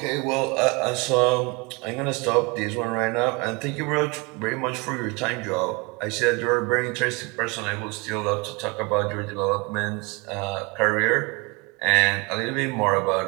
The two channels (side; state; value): left; quieter; 28.3 dB